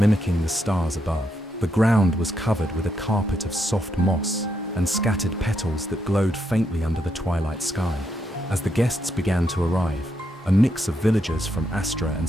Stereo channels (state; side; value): normal; both; correlation 0.80